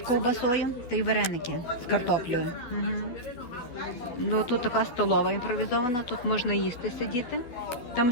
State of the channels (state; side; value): late; right; 12 ms